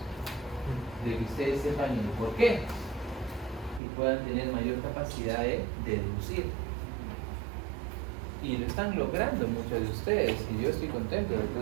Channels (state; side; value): drops out; left; at 3.8 s